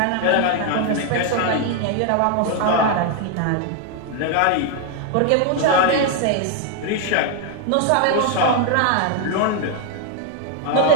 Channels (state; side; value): different; both; correlation 0.01